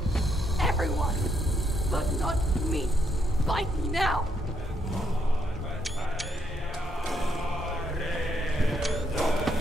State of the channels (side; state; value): both; normal; correlation 0.75